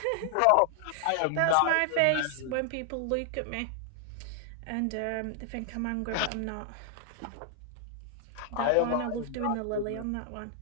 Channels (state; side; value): different; both; correlation 0.00